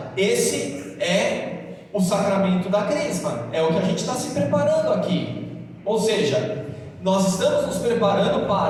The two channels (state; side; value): identical; both; correlation 1.00